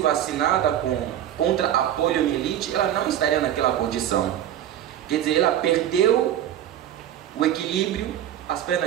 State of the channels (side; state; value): left; quieter; 11.2 dB